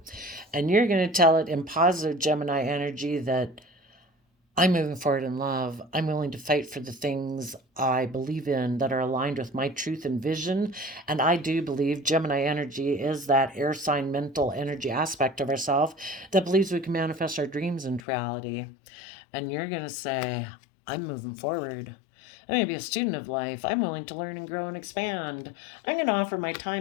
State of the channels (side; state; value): right; drops out; at 18.0 s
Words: And you're going to tell it in positive Gemini energy that I'm moving forward in love. I'm willing to fight for the things I believe in that are aligned with my truth and vision. And I do believe Gemini energy is that air sign mental energy aspect of ourselves that believes we can manifest our dreams into reality. And you're going to say, I'm moving forward. I'm going to be a student of life. I'm willing to learn and grow and expand. I'm going to offer my